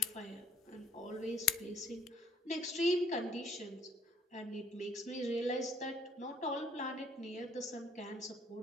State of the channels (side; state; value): both; normal; correlation 0.60